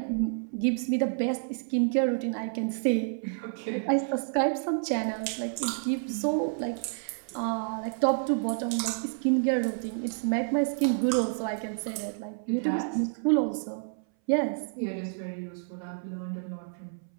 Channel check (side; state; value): left; silent; 58 dB below the other